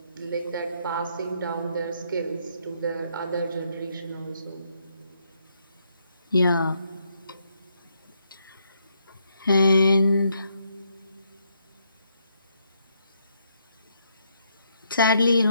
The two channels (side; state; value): both; inverted; correlation -0.76